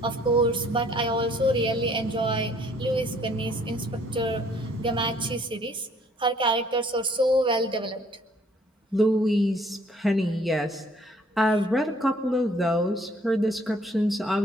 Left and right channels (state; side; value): normal; both; correlation 0.61